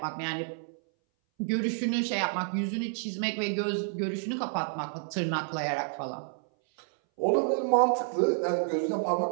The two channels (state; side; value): silent; left; 58 dB below the other